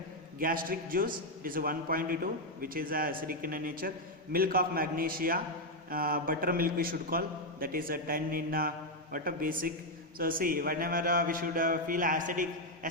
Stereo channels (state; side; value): normal; both; correlation 0.02